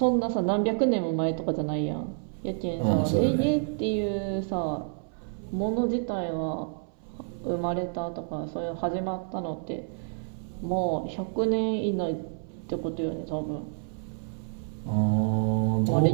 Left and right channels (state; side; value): silent; left; 59 dB below the other